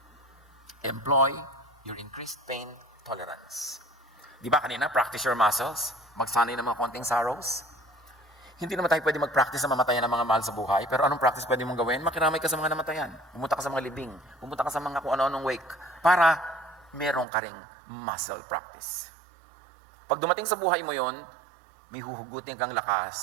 Employ your increased pain tolerance. Di ba kanina, practice your muscles? Magsanay ng mga konting sorrows? Hindi naman tayo pwede mag-practice na mamatayan ng mga mahal sa buhay, pero anong practice pwede mong gawin? Makiramay ka sa mga namatayan. Pumunta ka sa mga libing. Pumunta ka sa mga kung ano-anong wake. Para meron ka ring muscle practice. Pag dumating sa buhay mo yon, may huhugutin kang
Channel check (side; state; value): left; drops out; at 17.2 s